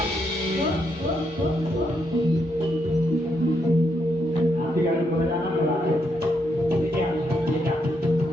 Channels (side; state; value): both; normal; correlation 0.78